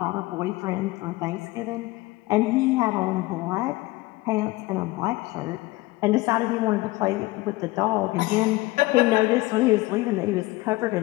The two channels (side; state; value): right; quieter; 20.5 dB